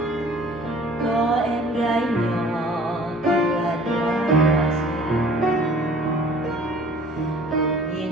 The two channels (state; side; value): normal; both; correlation 0.51